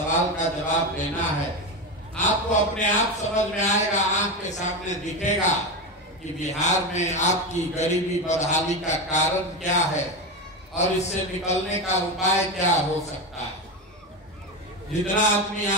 का जवाब देना है। आपको अपने आप समझ में आएगा, आंख के सामने दिखेगा कि बिहार में आपकी गरीबी, बदहाली का कारण क्या है और इससे निकलने का उपाय क्या हो सकता है। जितना आदमी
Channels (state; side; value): normal; both; correlation 0.17